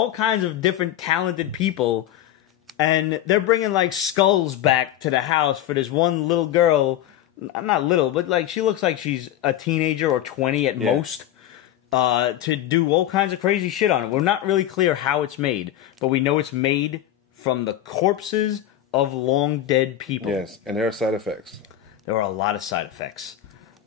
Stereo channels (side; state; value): right; quieter; 11.9 dB